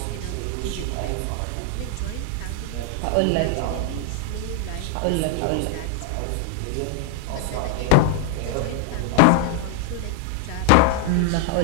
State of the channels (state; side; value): different; both; correlation 0.00